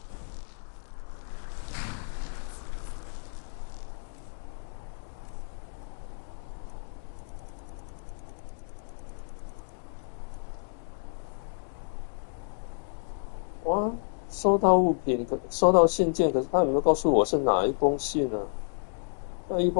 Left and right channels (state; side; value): silent; right; digital silence